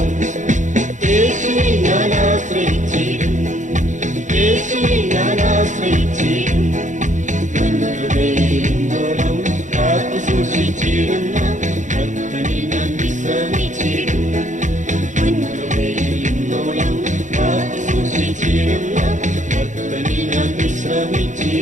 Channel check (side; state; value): left; late; 0.36 ms